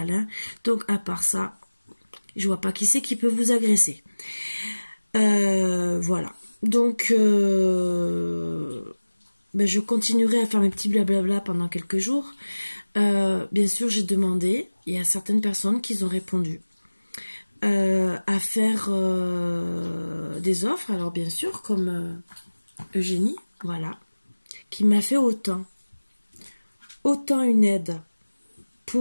Donc à part ça, je vois pas qui c'est qui peut vous agresser. Voilà. Donc je continuerai à faire mes petits blablabla pendant quelques jours. Bien sûr, j'ai demandé, il y a certaines personnes qui ont répondu à faire des offres. Alors bien sûr, comme Eugénie, voilà, qui m'a fait autant une aide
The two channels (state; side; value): inverted; both; correlation -1.00